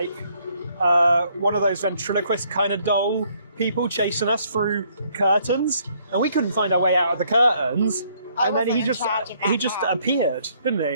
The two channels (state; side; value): inverted; both; correlation -0.67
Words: one of those ventriloquist kind of doll people chasing us through curtains, and we couldn't find our way out of the curtains. And then he just appeared, didn't